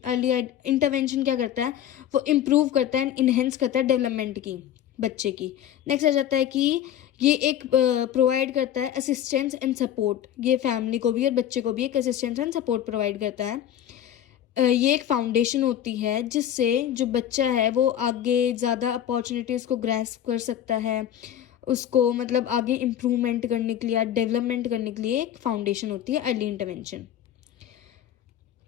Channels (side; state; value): right; quieter; 10.7 dB